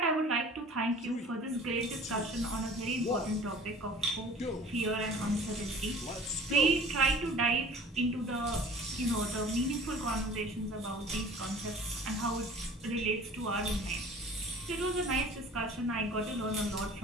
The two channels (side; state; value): both; normal; correlation 0.46